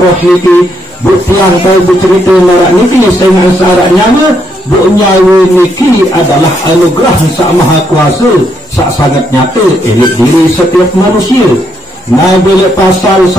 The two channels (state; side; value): normal; both; correlation 0.76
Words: roh niki. Buktian tahu bercerita marak niki dengan syarat nyawa bu nyawa niki adalah anugerah Sang Maha Kuasa sangat nyata elit diri setiap manusia. Nah bila pasal